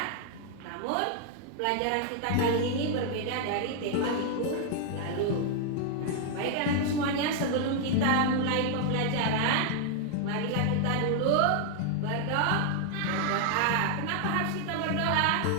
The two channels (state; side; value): different; both; correlation 0.00